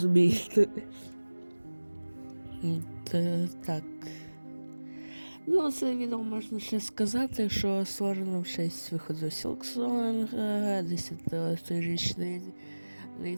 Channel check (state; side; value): inverted; both; correlation -1.00